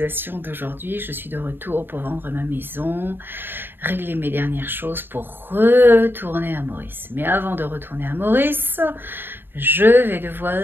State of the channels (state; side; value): late; left; 0.099 ms